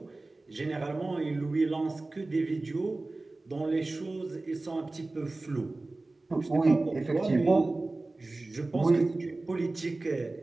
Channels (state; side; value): quieter; left; 3.1 dB